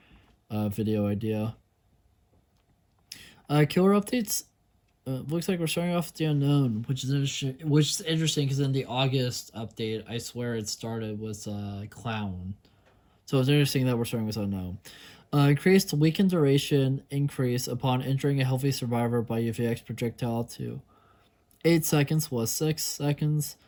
video idea. Killer updates. Looks like we're starting off with the unknown, which is interesting because in the August update, I swear it started with clown. So it's interesting that we're starting with unknown. Increased weakened duration increase upon entering a healthy survivor by UVX projectile to 8 seconds was 6 seconds.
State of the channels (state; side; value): identical; both; correlation 1.00